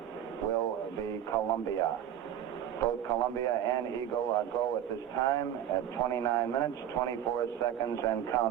will be Columbia. Both Columbia and Eagle are go at this time at 29 minutes, 24 seconds, and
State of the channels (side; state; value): left; quieter; 10.3 dB